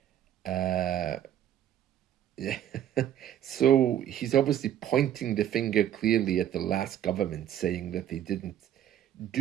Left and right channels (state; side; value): quieter; left; 10.8 dB